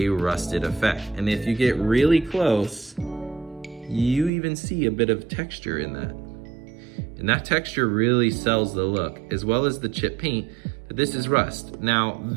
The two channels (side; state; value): left; drops out; at 4.3 s